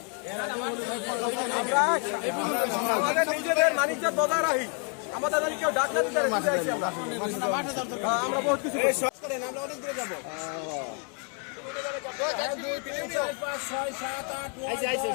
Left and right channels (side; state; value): right; quieter; 39.7 dB